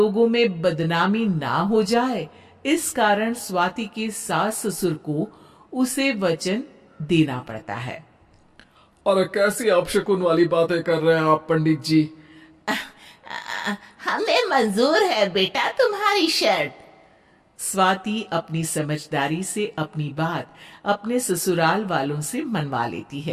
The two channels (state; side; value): identical; both; correlation 1.00